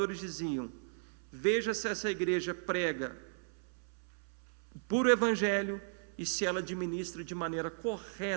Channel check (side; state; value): left; silent; 54 dB below the other